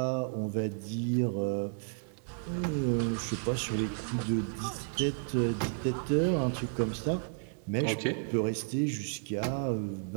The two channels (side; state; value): left; silent; digital silence